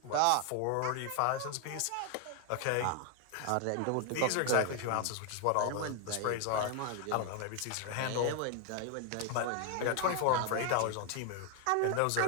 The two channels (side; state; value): both; different; correlation 0.00